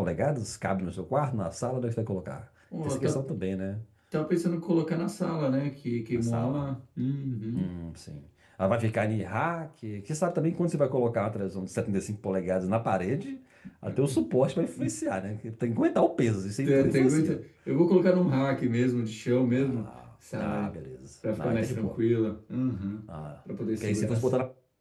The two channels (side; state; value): both; identical; correlation 1.00